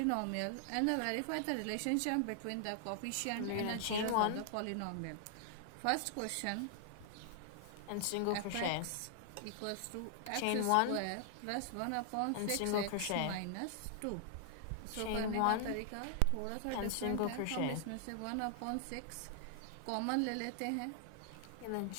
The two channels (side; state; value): both; different; correlation -0.01